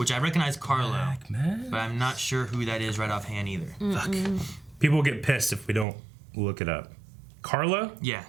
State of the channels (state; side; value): drops out; left; at 5.9 s